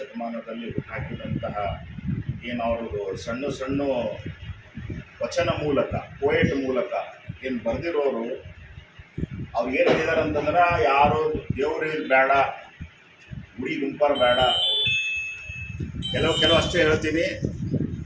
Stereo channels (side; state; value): both; identical; correlation 1.00